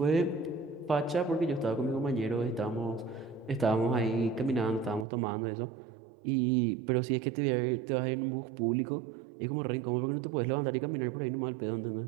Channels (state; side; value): drops out; left; at 5.1 s